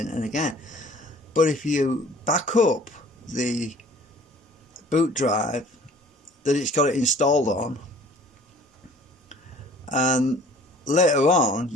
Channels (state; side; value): normal; both; correlation 0.51